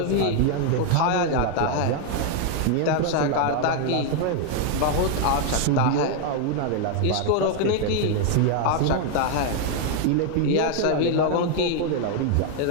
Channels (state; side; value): different; both; correlation 0.00